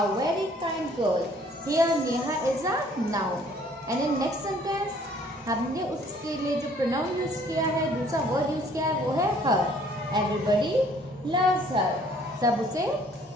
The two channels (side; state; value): both; normal; correlation 0.58